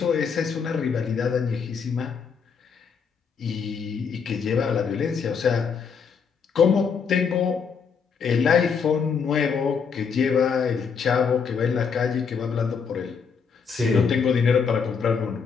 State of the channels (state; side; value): quieter; right; 6.1 dB